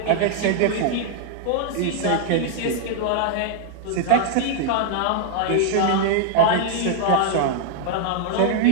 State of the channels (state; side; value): different; both; correlation 0.00